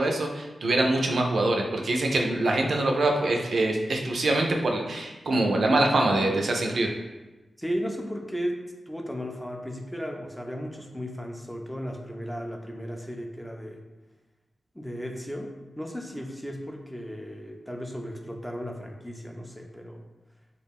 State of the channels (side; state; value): both; normal; correlation 0.91